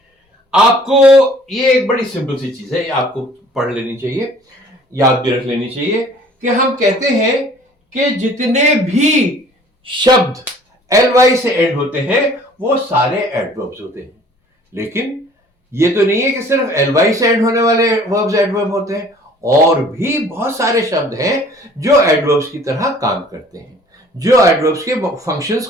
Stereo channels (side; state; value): both; normal; correlation 0.52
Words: आपको ये एक बड़ी सिंपल सी चीज है, ये आपको पढ़ लेनी चाहिए, याद भी रख लेनी चाहिए, कि हम कहते हैं कि जितने भी शब्द ly से एंड होते हैं वो सारे एडवर्ब्स होते हैं. लेकिन ये तो नहीं है कि सिर्फ ly से एंड होने वाले वर्ब्स एडवर्ब होते हैं, और भी बहुत सारे शब्द हैं जो एडवर्ब्स की तरह काम करते हैं, जो एडवर्ब्स के फंक्शंस